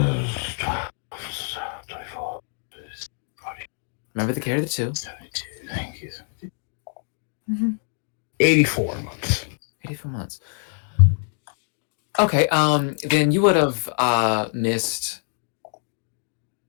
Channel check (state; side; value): silent; right; 62 dB below the other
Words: Remember the carry the 2. 72, thank you. 84 months. 84 months. Okay, then you would have missed